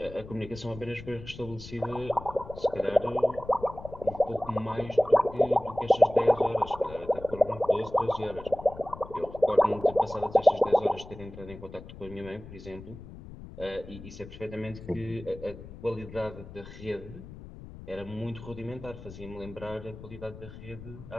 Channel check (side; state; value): left; noise; rumble, 15 dB below the sound